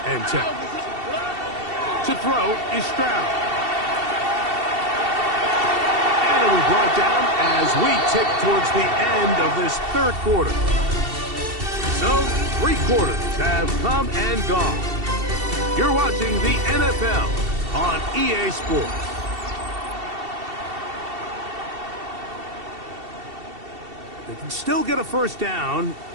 and 10. To throw is Stroud. And it'll be brought down as we tick towards the end of this 3rd quarter. So 3 quarters have come and gone. You're watching the NFL on EA Sports. They can still get a first down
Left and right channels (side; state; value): left; late; 2.7 ms